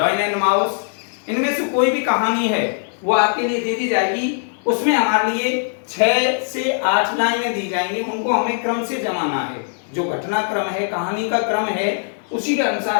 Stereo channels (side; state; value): right; silent; digital silence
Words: एंड माउस। इनमें से कोई भी कहानी है वो आपके लिए दे दी जाएगी। उसमें हमारे लिए 6 से 8 लाइनें दी जाएंगी, उनको हमें क्रम से जमाना है। जो घटना क्रम है, कहानी का क्रम है, उसी के